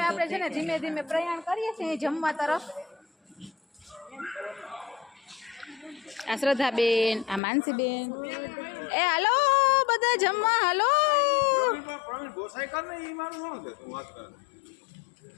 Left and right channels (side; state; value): right; drops out; at 7.4 s